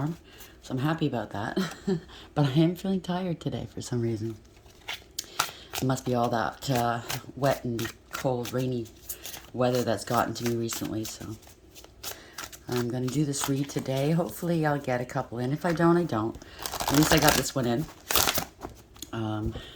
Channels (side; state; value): both; identical; correlation 1.00